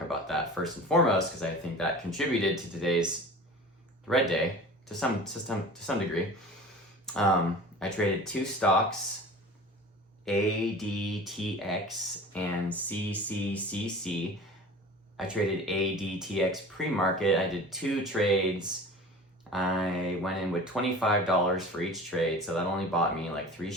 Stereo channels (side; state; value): both; normal; correlation 0.39